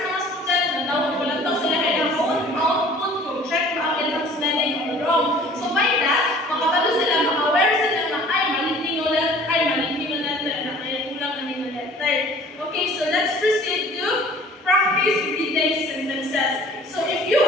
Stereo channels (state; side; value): normal; both; correlation 0.50